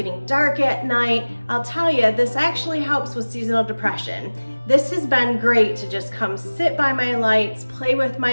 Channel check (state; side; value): inverted; both; correlation -1.00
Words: dark at night, I'll tell you, this actually helps with seasonal depression. This has been great to just come sit by my lights, play with